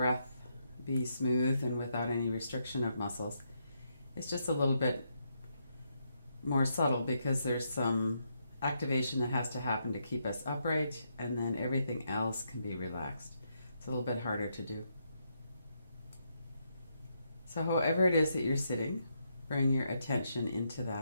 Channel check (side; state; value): both; inverted; correlation -0.79